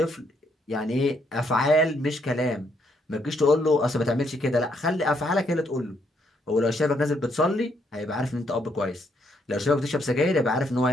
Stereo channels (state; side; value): normal; both; correlation 0.73